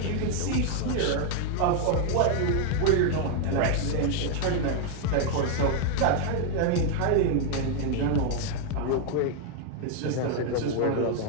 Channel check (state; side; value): different; both; correlation 0.00